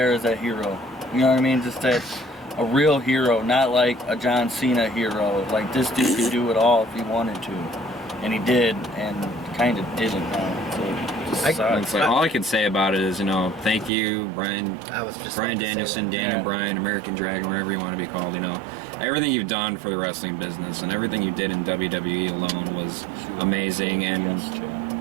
as that hero. You know what I mean? Just that a real hero, not like a John Cena hero. Like this dude could do it all if he wanted to, and he did, and kind of didn't. So it just sucks. It's like, all I can say about it is, you know, thank you, Bryan. I was just Bryan about to say Danielson, that. Daniel Yeah. Bryan, American Dragon, whatever you want to be called, you know. Everything you've done for the wrestling business and everything you did in WWE alone was amazing, and Yes,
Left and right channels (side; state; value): left; drops out; at 13.9 s